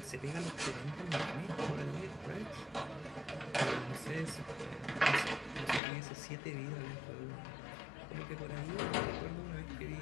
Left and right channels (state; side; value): drops out; right; at 5.8 s